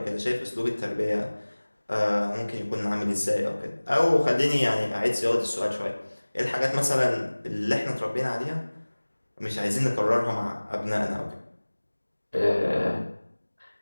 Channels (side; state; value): both; inverted; correlation -1.00